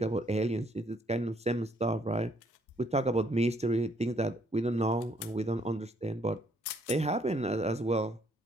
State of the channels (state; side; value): normal; both; correlation 0.68